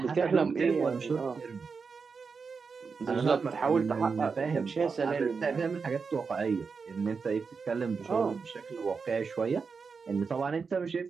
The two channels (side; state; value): left; quieter; 5.2 dB